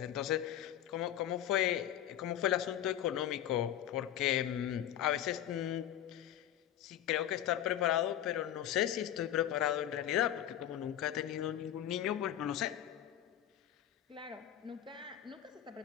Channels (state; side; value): quieter; right; 11.5 dB